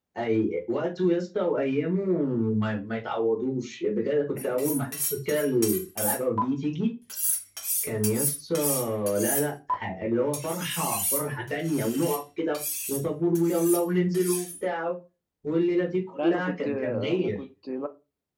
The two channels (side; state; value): both; identical; correlation 1.00